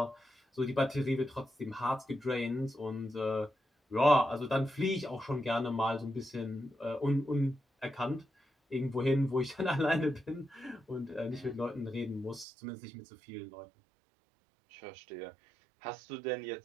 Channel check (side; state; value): left; drops out; at 12.5 s